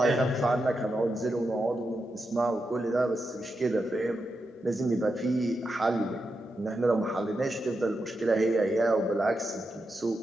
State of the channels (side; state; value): both; normal; correlation 0.87